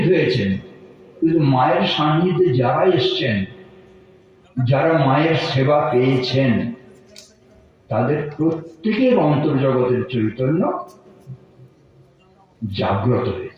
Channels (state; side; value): identical; both; correlation 1.00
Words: হয়েছেন, কিন্তু মায়ের সান্নিধ্যে যারা এসছেন, যারা মায়ের সেবা পেয়েছেন, তাদের প্রত্যেকের অন্তর্জগতের চৈতন্য জাগ্রত